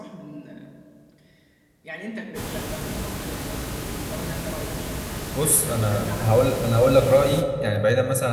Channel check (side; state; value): both; identical; correlation 1.00